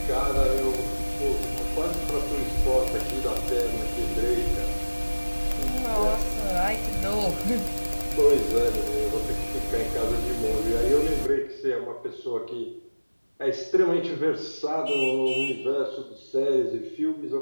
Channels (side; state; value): both; inverted; correlation -1.00